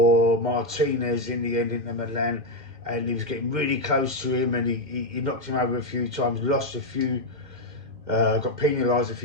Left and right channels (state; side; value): late; left; 2.1 ms